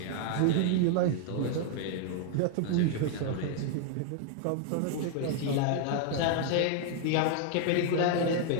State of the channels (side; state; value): both; different; correlation 0.00